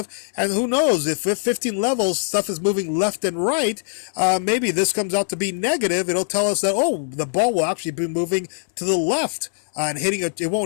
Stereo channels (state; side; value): silent; right; 64 dB below the other